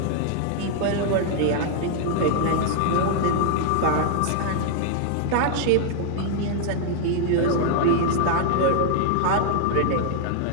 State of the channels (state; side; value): different; both; correlation 0.00